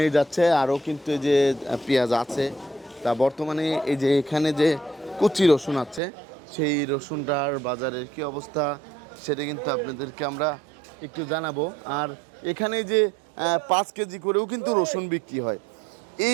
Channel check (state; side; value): drops out; left; at 6.0 s